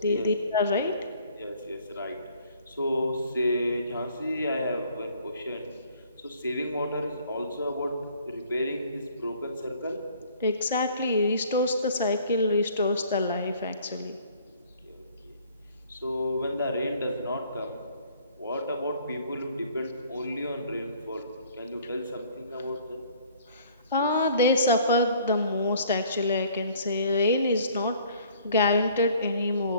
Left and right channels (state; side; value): inverted; both; correlation -0.56